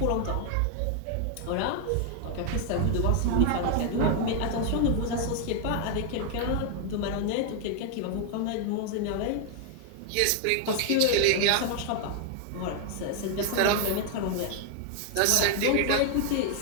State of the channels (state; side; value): different; both; correlation 0.00